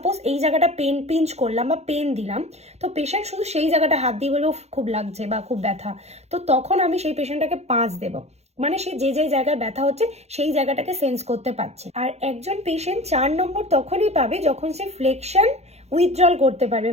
এই জায়গাটা পিঞ্চ করলাম বা পেন দিলাম, তো পেশেন্ট শুধু সেই জায়গাটা হাত দিয়ে বলবো খুব লাগছে বা খুব ব্যথা, তো তখন আমি সেই পেশেন্টটাকে 5 দেব। মানে সে যে জায়গায় ব্যথা হচ্ছে সেই জায়গাটাকে সেন্স করতে পারছে। আর একজন পেশেন্ট 4 নম্বর তখনই পাবে যখন সে ফ্লেকশন উইথড্রল করতে পারবে।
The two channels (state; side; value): late; left; 0.31 ms